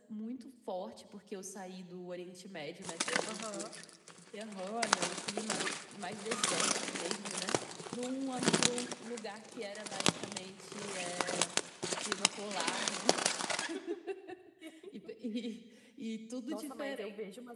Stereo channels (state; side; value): identical; both; correlation 1.00